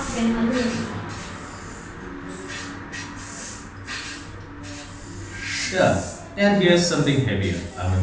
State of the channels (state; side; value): identical; both; correlation 1.00